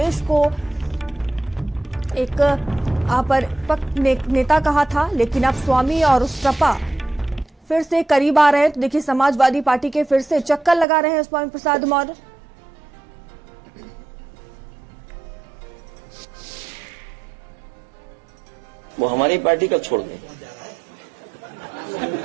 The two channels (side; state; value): left; drops out; at 10.9 s